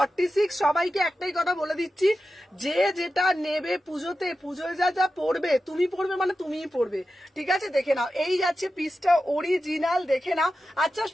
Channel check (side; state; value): both; normal; correlation 0.92